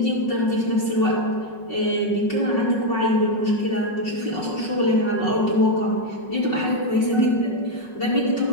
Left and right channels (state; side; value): late; right; 5.4 ms